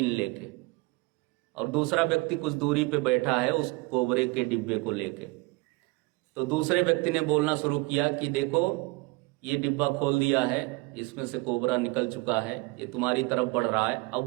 लेके, और दूसरा व्यक्ति कुछ दूरी पे बैठा है उस कोबरे के डिब्बे को लेके। तो दूसरे व्यक्ति ने बोलना शुरू किया कि देखो ये डिब्बा खोल दिया है, इसमें से कोबरा निकल चुका है, ये तुम्हारी तरफ बढ़ रहा है। अब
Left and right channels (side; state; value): left; quieter; 24.5 dB